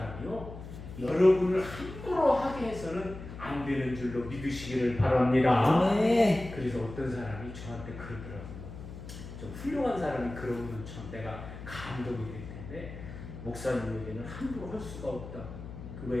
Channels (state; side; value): noise; left; hum, 12 dB below the sound